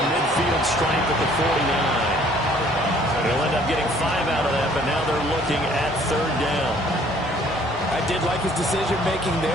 midfield stripe at the 49. He'll end up getting 5 out of that, but now they're looking at third down. I did like his decision-making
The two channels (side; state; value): both; normal; correlation 0.58